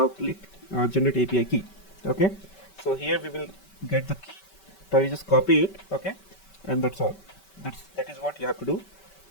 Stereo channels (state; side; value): late; right; 5.2 ms